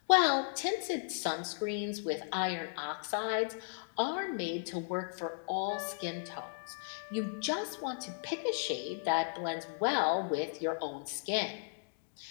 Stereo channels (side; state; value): right; silent; digital silence